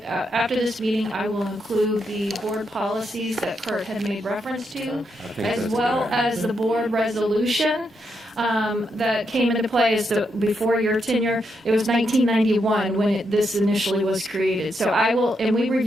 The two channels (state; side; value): normal; both; correlation 0.81